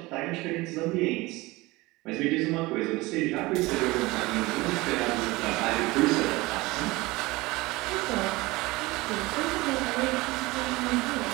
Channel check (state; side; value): quieter; left; 21.5 dB